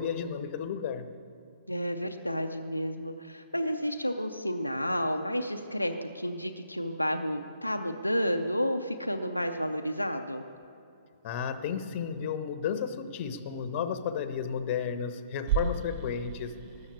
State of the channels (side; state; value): both; inverted; correlation -0.71